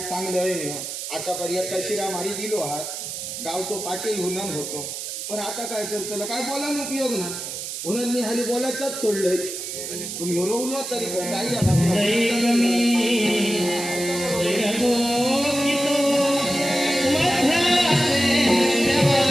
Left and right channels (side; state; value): right; noise; hiss, 6 dB below the sound